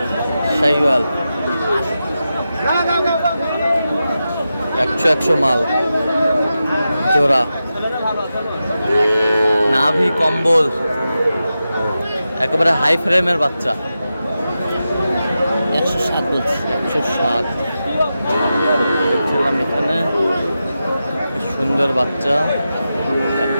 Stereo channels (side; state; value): both; inverted; correlation -0.91